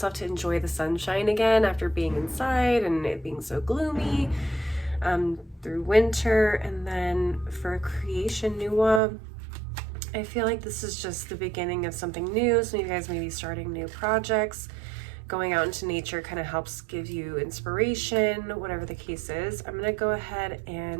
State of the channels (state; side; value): drops out; left; at 9.0 s